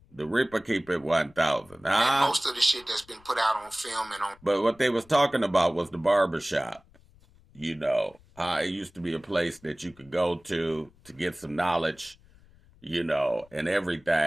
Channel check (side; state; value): left; noise; rumble, 28 dB below the sound